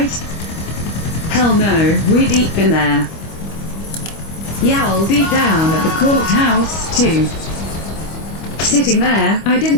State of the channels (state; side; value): late; right; 25 ms